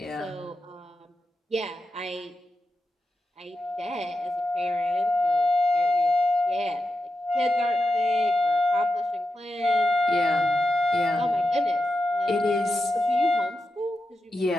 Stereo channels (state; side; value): normal; both; correlation 0.89